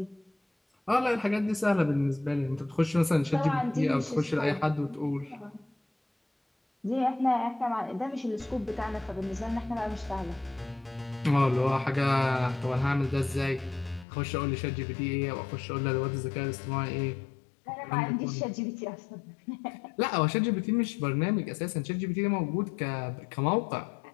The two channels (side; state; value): right; drops out; at 14.1 s